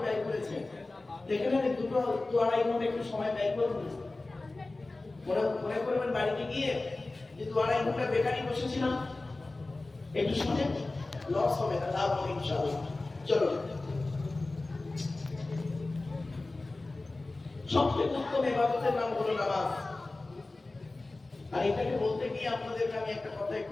ব্যয় করেছেন, দেখে না 2-2.5 ঘন্টা একটু সময় ব্যয় করুন। মনে করবেন বাড়িতে গিয়ে যে 2-2.5 ঘন্টা বেকারই বসেছিলাম, একটু শুনে লস হবে না, লাভ হবে ইনশাআল্লাহ। চলো, সবচেয়ে উত্তম ইবাদতের নাম হলো নামাজ। আর এটাকে বলতে গিয়ে আপনাদেরকে আমি একটা কথা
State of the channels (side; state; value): right; quieter; 3.1 dB